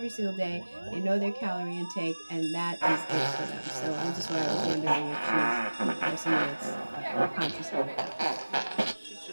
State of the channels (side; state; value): both; inverted; correlation -1.00